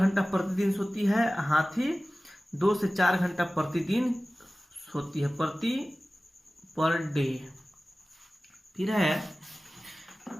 प्रतिदिन सोती है। हाथी 2 से 4 घंटा प्रतिदिन सोती है, पर डे। फिर है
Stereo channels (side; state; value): both; normal; correlation 0.97